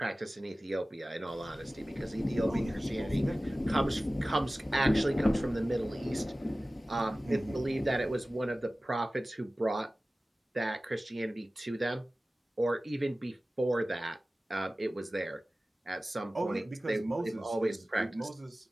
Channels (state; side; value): normal; both; correlation 0.97